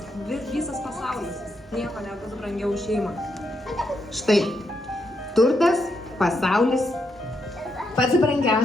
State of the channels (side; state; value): both; normal; correlation 0.80